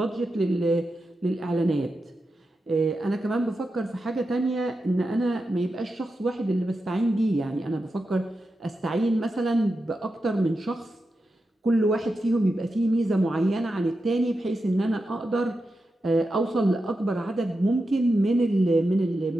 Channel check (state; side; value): normal; both; correlation 0.89